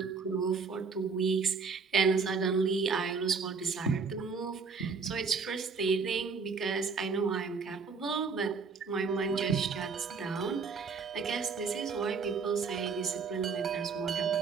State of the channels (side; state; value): left; quieter; 5.1 dB